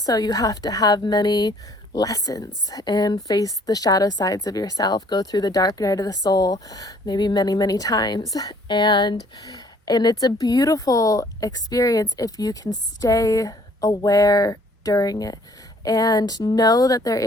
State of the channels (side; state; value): both; normal; correlation 0.59